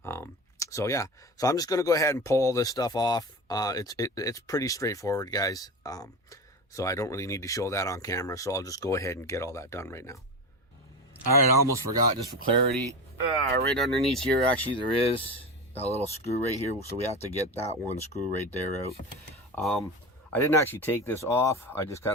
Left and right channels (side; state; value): both; normal; correlation 0.25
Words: So yeah, so I'm just going to go ahead and pull all this stuff off. It's pretty straightforward, guys. So I don't really need to show that on camera, so I'll just go ahead and get all that done right now. All right, I almost forgot, just for clarity, right underneath here, actually, there is a little screw right here, so we have to get that one screw right there out. I didn't actually take this off. I just